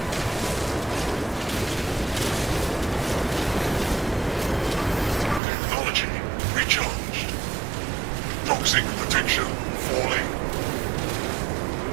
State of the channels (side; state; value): left; drops out; at 5.4 s